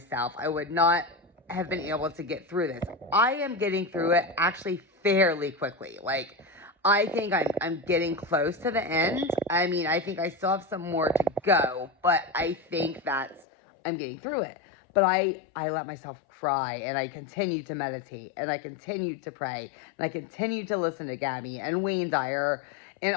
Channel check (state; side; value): drops out; right; at 13.5 s